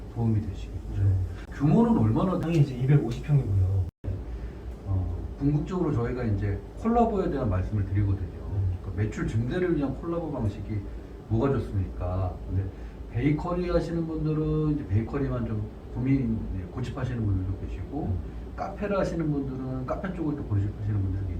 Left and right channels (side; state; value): both; identical; correlation 1.00